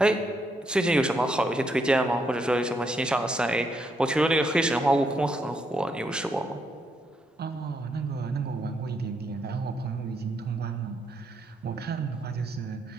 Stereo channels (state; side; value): normal; both; correlation 0.77